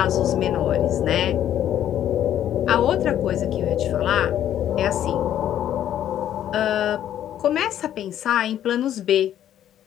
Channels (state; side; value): quieter; right; 11.0 dB